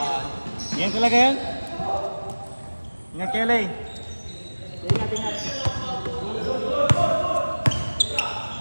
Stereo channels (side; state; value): both; inverted; correlation -1.00